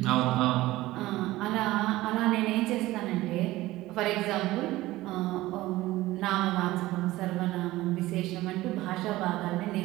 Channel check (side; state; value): left; quieter; 17.5 dB